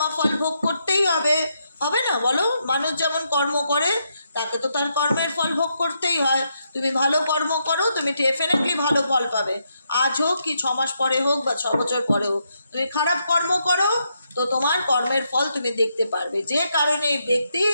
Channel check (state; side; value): inverted; both; correlation -0.79